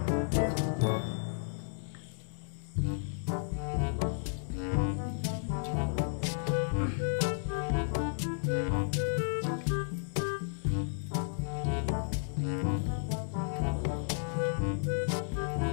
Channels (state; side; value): silent; right; 56 dB below the other